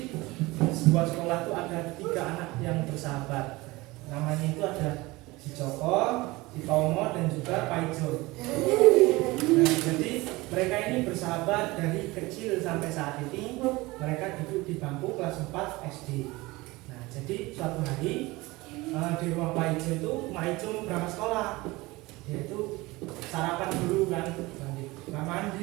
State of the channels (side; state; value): left; quieter; 21.5 dB